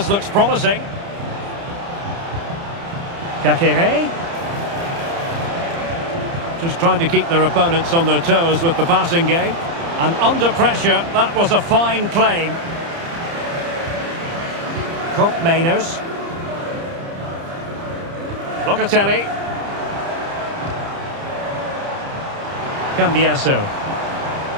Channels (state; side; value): late; left; 30 ms